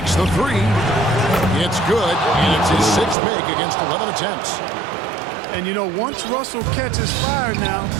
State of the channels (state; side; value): drops out; left; at 3.2 s